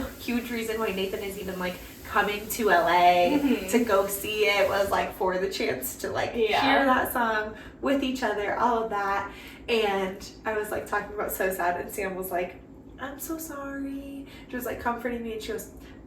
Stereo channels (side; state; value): both; identical; correlation 1.00